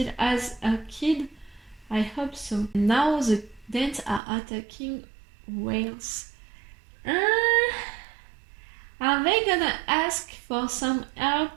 has a kid. I hope so. Now the Danes are attacking Wales. Are they gonna ask for some help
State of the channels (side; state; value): left; drops out; at 4.2 s